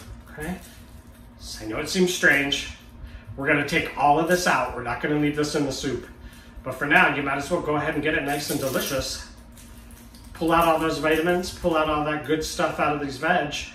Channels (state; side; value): identical; both; correlation 1.00